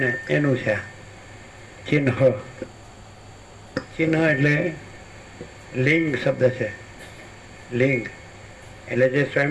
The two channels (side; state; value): both; identical; correlation 1.00